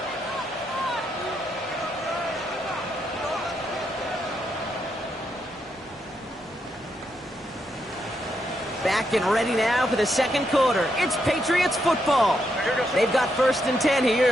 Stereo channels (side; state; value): both; normal; correlation 0.80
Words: Back and ready now for the second quarter. It's Patriots football. They've got 1st and 10 here,